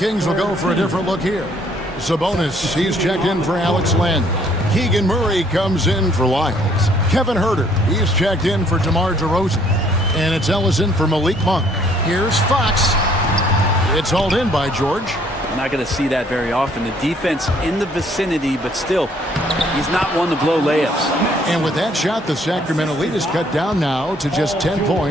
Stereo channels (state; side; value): normal; both; correlation 0.63